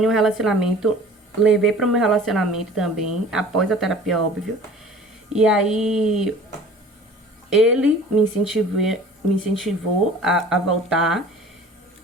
um relacionamento, levei para o meu relacionamento também, após a terapia, óbvio. E aí, ele me incentivou a voltar.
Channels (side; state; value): both; normal; correlation 0.45